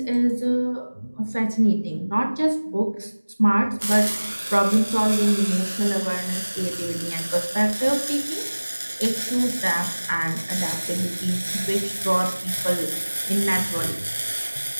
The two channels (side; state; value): both; inverted; correlation -1.00